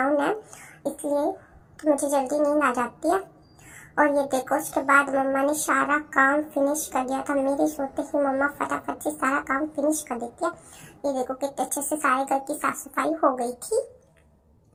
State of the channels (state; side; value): identical; both; correlation 1.00